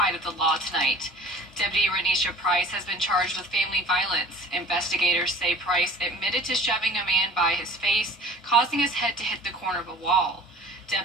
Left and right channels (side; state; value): both; normal; correlation 0.44